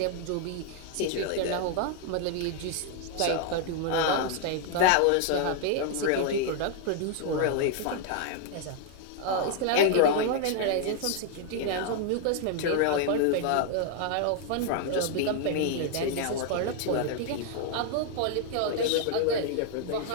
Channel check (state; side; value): different; both; correlation 0.00